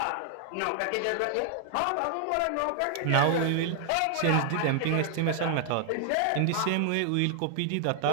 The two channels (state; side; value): different; both; correlation 0.00